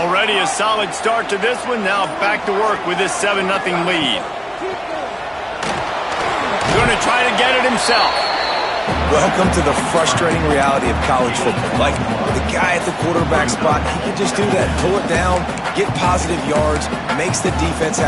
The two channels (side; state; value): both; identical; correlation 1.00